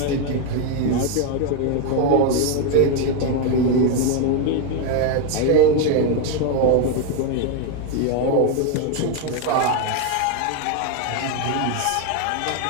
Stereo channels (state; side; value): different; both; correlation 0.01